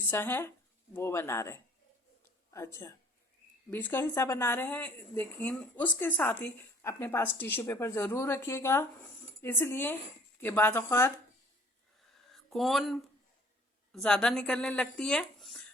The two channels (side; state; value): both; normal; correlation 0.53